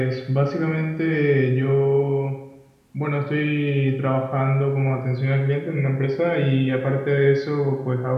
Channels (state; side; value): identical; both; correlation 1.00